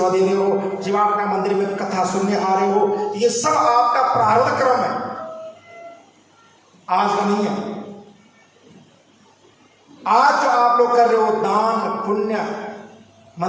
दे रहे हो, शिवाटिका मंदिर में कथा सुनने आ रहे हो, तो ये सब आपका प्रारब्ध कर्म है, आज का नहीं है। आज जो आप लोग कर रहे हो दान पुण्य,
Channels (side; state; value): both; identical; correlation 1.00